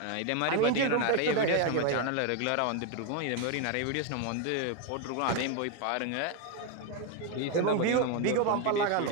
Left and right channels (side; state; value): both; different; correlation 0.01